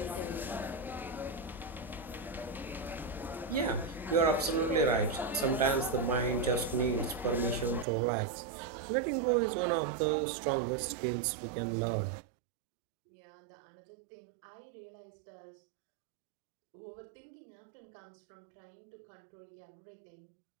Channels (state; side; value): drops out; left; at 7.9 s